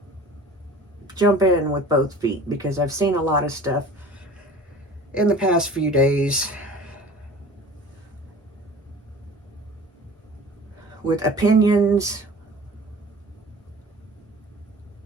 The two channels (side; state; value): both; normal; correlation 0.43